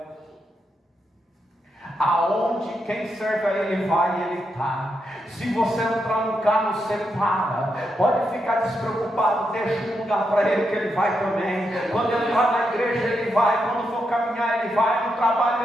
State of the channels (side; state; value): both; normal; correlation 0.83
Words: Aonde quem serve a ele vai, ele está. Se você entrar no carro, você para. Pode ficar despreocupado, deixa um lugar para ele que ele vai também. Quando entrar na igreja, ele vai. Quando for caminhar, ele vai. No